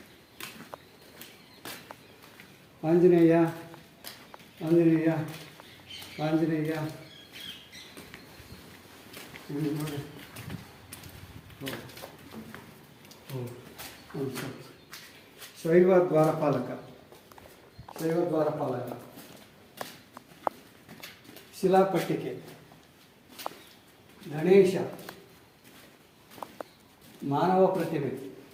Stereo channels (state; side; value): identical; both; correlation 1.00